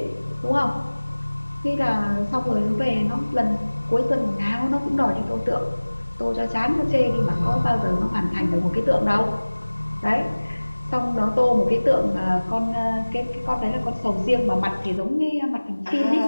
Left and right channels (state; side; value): inverted; both; correlation -1.00